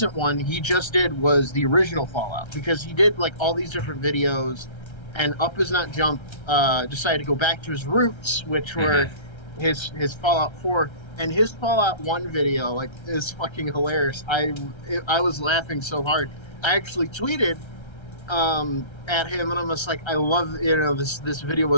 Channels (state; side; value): late; right; 1.3 ms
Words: one he just did was the original Fallout, because he did like all these different videos, and Up Is Not Jump decided to go back to his roots, which were his Fallout 4. And his Fallout 1 video like is fucking hilarious. I was laughing so hard. I actually tweeted at him, and I'm just like, I love, this video